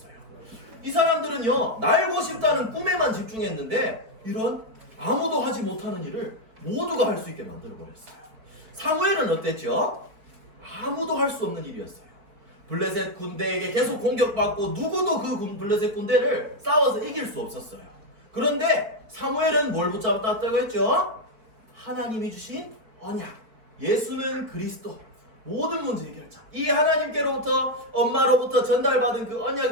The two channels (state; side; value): late; left; 4.7 ms